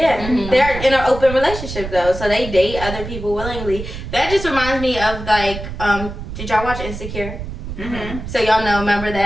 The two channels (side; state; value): right; noise; rumble, 8 dB below the sound